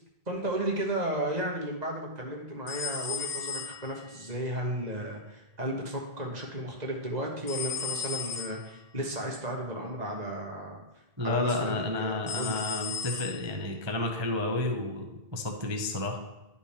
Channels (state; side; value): late; left; 2.0 ms